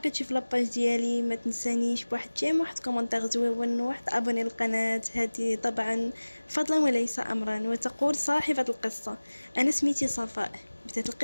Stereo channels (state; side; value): inverted; both; correlation -1.00